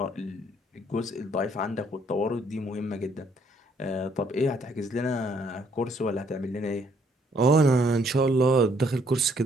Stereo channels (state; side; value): normal; both; correlation 0.66